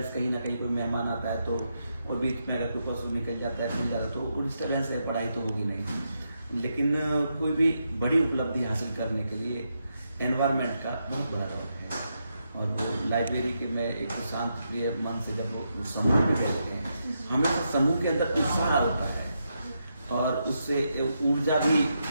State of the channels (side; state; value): both; inverted; correlation -0.83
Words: कहीं ना कहीं कोई मेहमान आता है तो और बीच में अगर कोई पशु निकल जाता है, चल जाता है, तो वो डिस्टर्बेंस है, पढ़ाई तो होगी नहीं। लेकिन कोई भी बड़ी उपलब्धि हासिल करने के लिए एनवायरनमेंट का बहुत बड़ा रोल है। और वो लाइब्रेरी के में एक शांत प्रिय मन से जब वो समूह में बैठते हैं, हमेशा समूह के अंदर उत्साह होता है, और उससे ऊर्जा भी